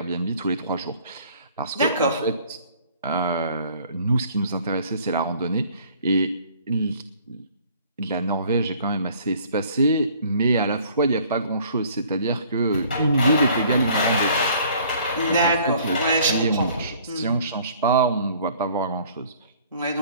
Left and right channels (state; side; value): inverted; both; correlation -0.55